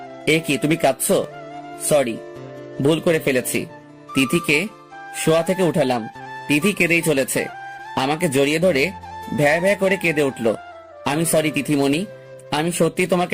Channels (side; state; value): both; identical; correlation 1.00